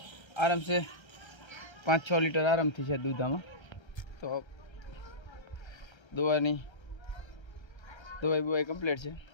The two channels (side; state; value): right; late; 1.3 ms